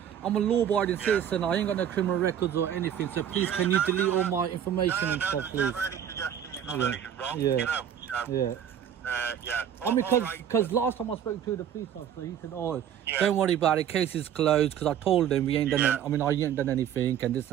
I'm a law-abiding citizen. I ain't got no criminal records or anything. So please, can you delete all my information and stuff, there's please? never any suggestion you've done Yeah. anything wrong. Yeah. You know. So, Yeah. yeah. I mean, All right. because last time I spoke to the police officer, he said, "Oh, Yeah. don't worry about it. Case is closed." Because I told him we ain't done. Yeah. I ain't done anything and this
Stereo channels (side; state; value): left; quieter; 9.4 dB